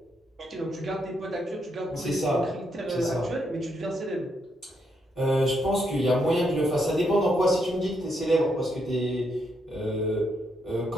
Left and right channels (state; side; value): normal; both; correlation 0.78